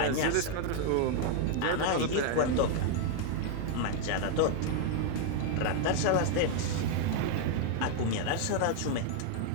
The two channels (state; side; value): different; both; correlation 0.00